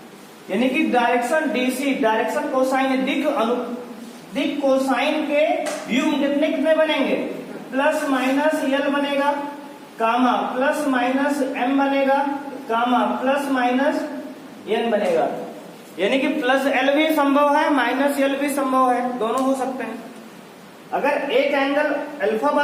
यानी कि डायरेक्शन डीसी, डायरेक्शन कोसाइन दिक कोसाइन के व्यू कितने कितने बनेंगे, प्लस माइनस यल बनेगा, कामा प्लस माइनस एम बनेगा, कामा प्लस माइनस एन बनेगा। यानी कि प्लस एल भी संभव है, माइनस एल भी संभव है, दोनों हो सकते हैं। अगर एक एंगल अल्फा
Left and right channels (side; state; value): both; identical; correlation 1.00